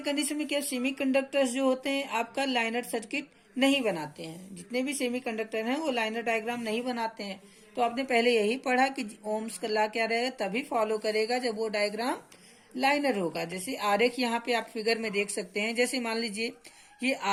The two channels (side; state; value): both; identical; correlation 1.00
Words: में क्या, सेमीकंडक्टर्स जो होते हैं आपका लाइनर सर्किट नहीं बनाते हैं। जितने भी सेमीकंडक्टर हैं वो लाइनर डायग्राम नहीं बनाते हैं। तो आपने पहले यही पढ़ा कि ओम्स का लॉ क्या रहेगा, तभी फॉलो करेगा जब वो डायग्राम लाइनर होगा। जैसे आरेख यहाँ पे आप फिगर में देख सकते हैं। जैसे मान लीजिए ये